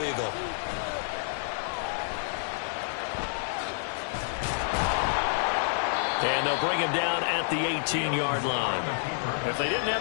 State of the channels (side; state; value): right; silent; digital silence